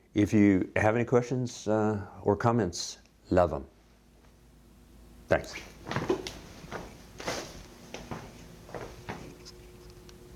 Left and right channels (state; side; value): identical; both; correlation 1.00